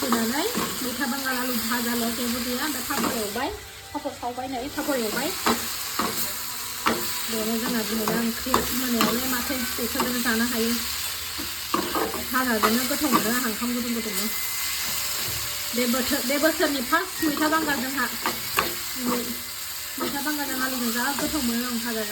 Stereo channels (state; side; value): identical; both; correlation 1.00